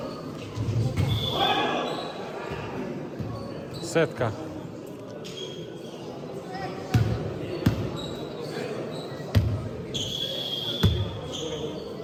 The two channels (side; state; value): both; identical; correlation 1.00